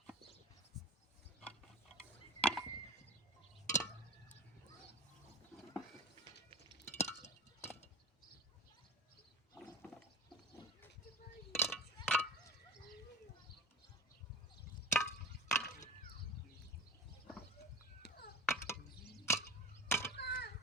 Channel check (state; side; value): normal; both; correlation 0.31